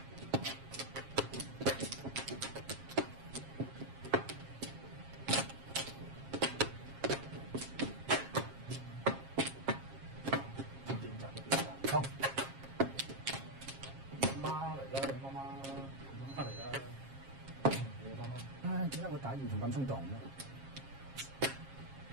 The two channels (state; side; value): late; left; 7.4 ms